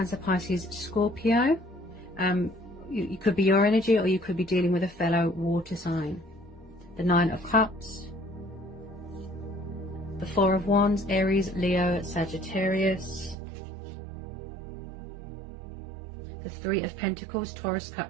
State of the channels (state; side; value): drops out; left; at 13.4 s